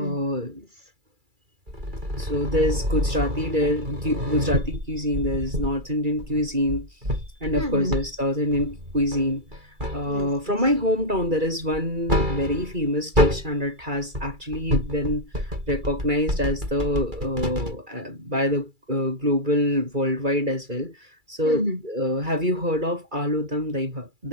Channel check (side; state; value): left; late; 2.3 ms